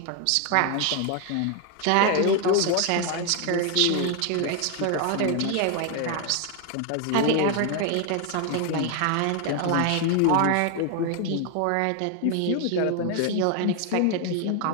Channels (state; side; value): different; both; correlation 0.01